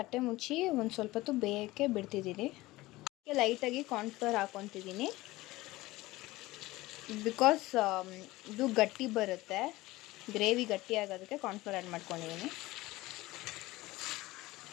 ಮುಚ್ಚಿ ಒಂದು ಸ್ವಲ್ಪ ಹೊತ್ತು ಬೇಯಕ್ಕೆ ಬಿಡ್ತಿದ್ದೀನಿ. ಲೈಟಾಗಿ ಕಾರ್ನ್ಫ್ಲೋರ್ ಹಾಕ್ಕೊತಿದ್ದೀನಿ. ಬಿಕಾಸ್ ಇದು ಗಟ್ಟಿ ಬರುತ್ತೆ, ಗ್ರೇವಿ ಗಟ್ಟಿ ಆಗೋದಕ್ಕೆ ಕಾರ್ನ್ಫ್ಲೋರ್ ಆ್ಯಡ್ ಮಾಡ್ಕೊಂಡಿದ್ದೀನಿ.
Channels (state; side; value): quieter; right; 19.0 dB